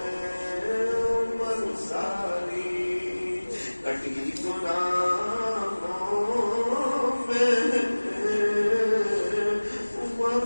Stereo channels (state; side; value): inverted; both; correlation -1.00